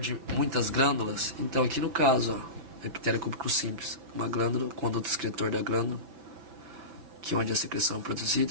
muitas glândulas. Então aqui no caso, epitélio cúbico simples, uma glândula, conduto excretor da glândula, que é onde a secreção é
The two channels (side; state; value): left; late; 5.6 ms